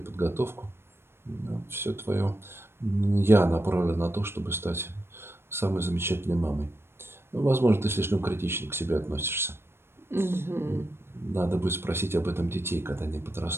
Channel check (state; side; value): late; left; 0.12 ms